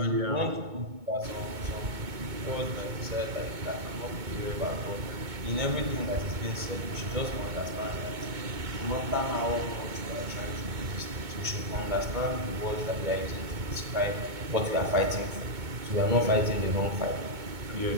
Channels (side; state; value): left; late; 2.2 ms